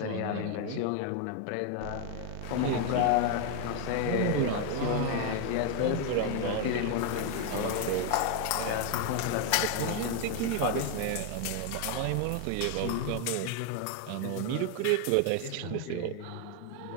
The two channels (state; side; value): different; both; correlation 0.01